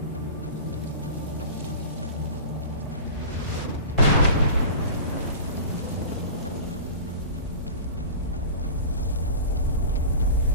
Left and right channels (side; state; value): both; inverted; correlation -0.35